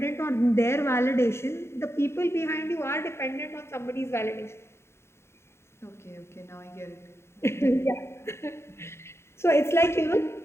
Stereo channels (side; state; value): right; late; 0.13 ms